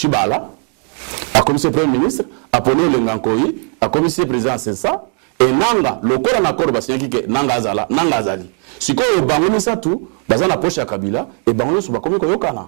a commissaire premier ministre a poni le Ngankoyi a commissaire président c'est ça et nanga le corps en accord basiaki que nanga azali siko bango ça tout bazana poche ya Kabila et bango so ba komi ko yokana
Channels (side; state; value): left; quieter; 37.2 dB